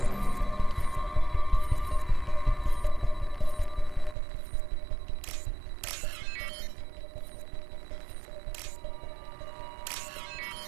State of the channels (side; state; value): left; drops out; at 4.2 s